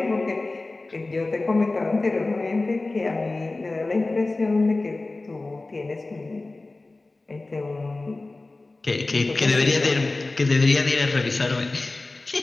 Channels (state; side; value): quieter; right; 3.2 dB